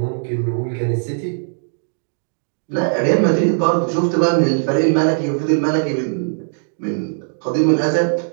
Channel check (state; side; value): silent; left; digital silence